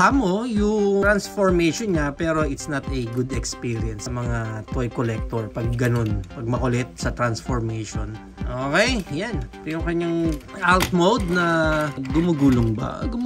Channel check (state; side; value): identical; both; correlation 1.00